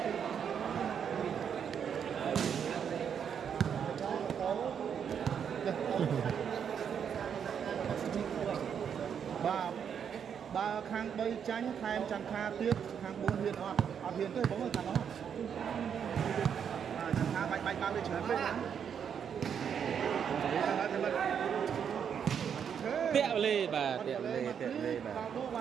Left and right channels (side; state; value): left; quieter; 7.8 dB